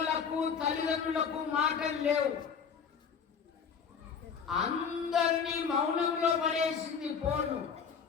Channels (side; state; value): right; quieter; 6.5 dB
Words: తల్లిదండ్రులకు మాటలు లేవు, అందరినీ మౌనంలో పడేసింది ఫోను.